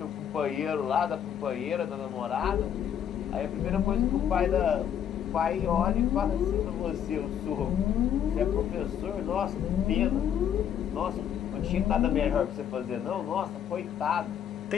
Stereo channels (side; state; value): right; quieter; 9.2 dB